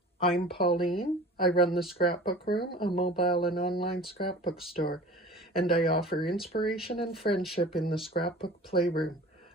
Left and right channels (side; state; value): both; normal; correlation 0.42